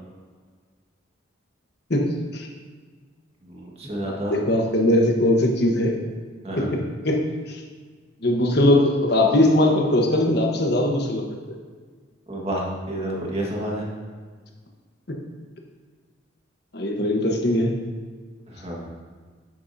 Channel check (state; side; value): normal; both; correlation 0.45